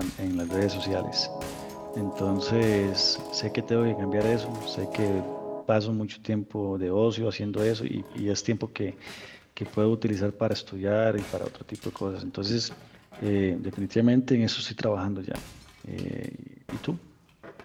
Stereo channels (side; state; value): both; identical; correlation 1.00